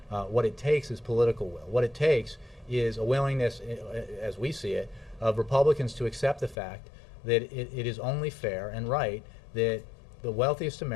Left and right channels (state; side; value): drops out; right; at 6.6 s